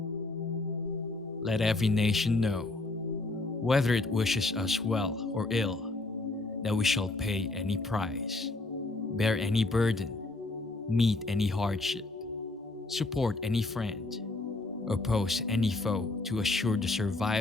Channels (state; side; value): quieter; right; 3.1 dB